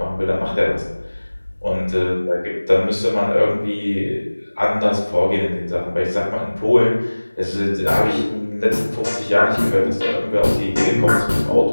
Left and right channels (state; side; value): inverted; both; correlation -1.00